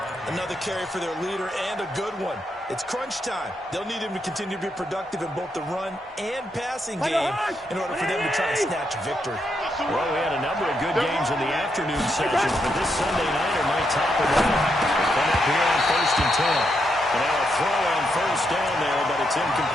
Another carry for their leader, and a good one. It's crunch time. They'll need him to continue to be productive in both the run and passing game in order for them to try and snatch a victory. Well, we had a number of good games in the afternoon sessions, but this Sunday nighter might top it all. They come up here on 1st and 10. And now a throw on first down there, but it's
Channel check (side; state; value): both; normal; correlation 0.80